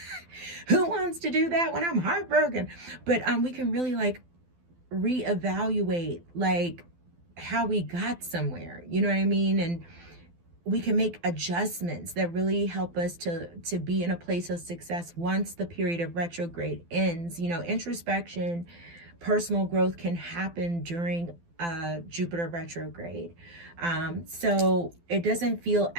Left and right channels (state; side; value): late; left; 12 ms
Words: Who wants to do that when I'm heartbroken? But we can really like reevaluate like how we got somewhere. You know what I mean? And we can make adjustments that really help us to be in a place of success once the period of retrograde ends. Introspection, personal growth can happen during Jupiter retrograde. So it doesn't feel